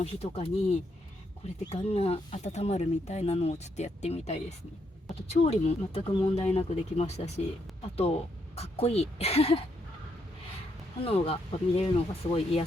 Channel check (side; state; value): both; normal; correlation 0.77